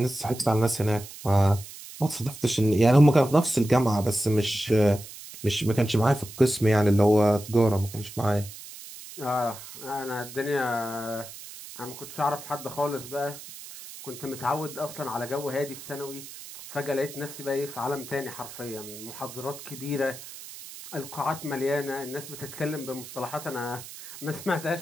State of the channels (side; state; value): right; noise; hiss, 14 dB below the sound